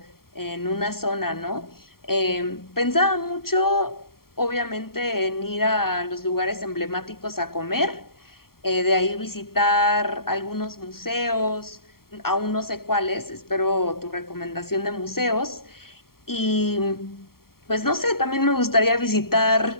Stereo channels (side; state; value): right; late; 0.93 ms